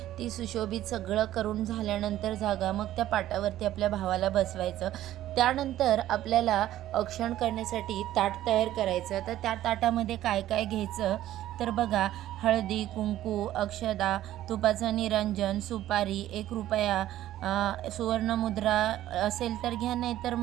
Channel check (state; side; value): quieter; left; 13.6 dB